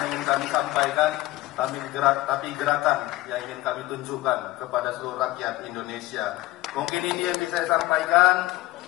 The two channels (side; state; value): right; quieter; 17.7 dB